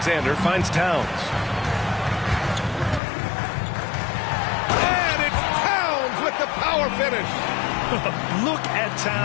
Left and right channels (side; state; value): right; drops out; at 3.0 s